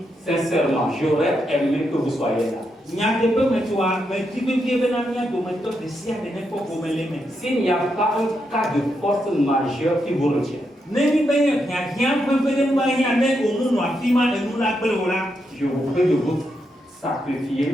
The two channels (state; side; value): normal; both; correlation 0.82